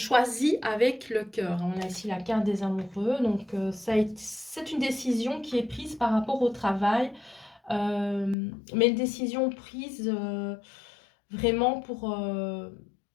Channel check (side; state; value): right; drops out; at 8.3 s